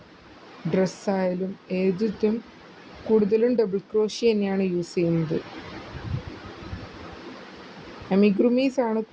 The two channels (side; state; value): both; identical; correlation 1.00